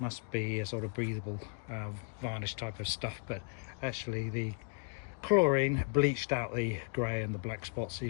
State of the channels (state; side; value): quieter; right; 38.1 dB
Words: be a sort of breathable varnish type of stuff, but actually the chlorine bleached out the grey and the black spots,